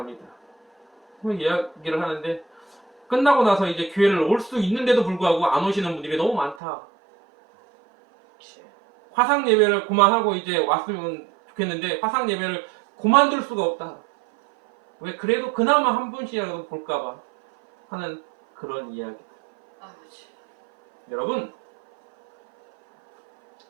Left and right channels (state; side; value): drops out; left; at 6.6 s